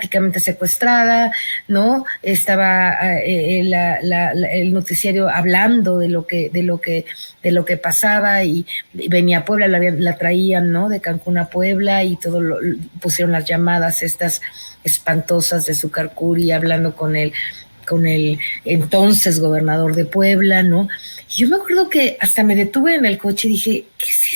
secuestrada, ¿no? Estaba el noticiario hablando de lo que pasaba, y venía a Puebla, la traían, ¿no? De Cancún a Puebla, y pusieron las llamadas estas espantosas de Zúcar Curi hablando con el entonces gobernador de Puebla, ¿no? Y yo me acuerdo que hasta me detuve en el coche y dije, ¿qué es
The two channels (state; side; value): inverted; both; correlation -1.00